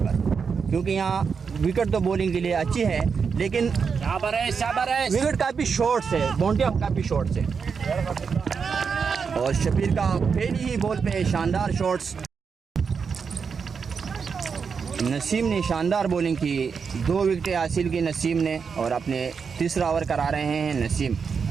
क्योंकि यहाँ विकेट तो बॉलिंग के लिए अच्छी है, लेकिन विकेट काफ़ी शॉर्ट्स है, बाउंड्री काफ़ी शॉर्ट्स है। और शबीर का पहली ही बॉल पे शानदार शॉट्स। नसीम ने शानदार बॉलिंग की, 2 विकेटें हासिल की नसीम ने और अपने तीसरा ओवर करा रहे हैं नसीम।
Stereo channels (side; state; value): left; quieter; 5.9 dB